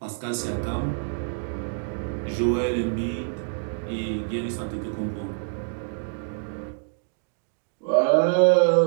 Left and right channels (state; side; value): silent; left; digital silence